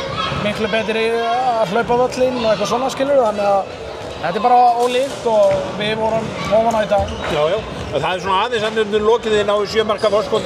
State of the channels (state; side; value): identical; both; correlation 1.00